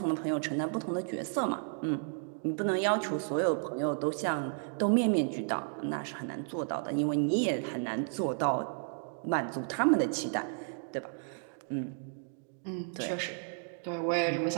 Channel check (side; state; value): left; silent; 56 dB below the other